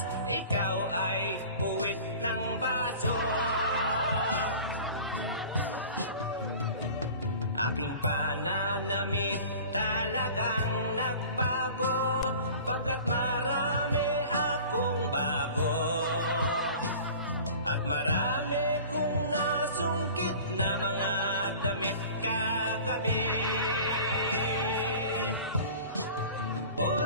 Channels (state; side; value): inverted; both; correlation -0.42